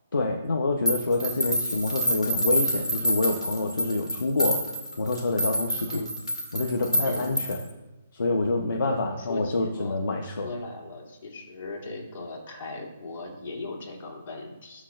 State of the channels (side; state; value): both; inverted; correlation -0.75